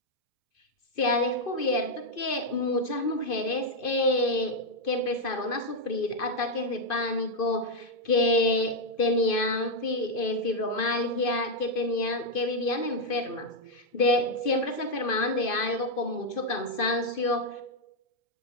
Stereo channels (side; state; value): right; late; 2.5 ms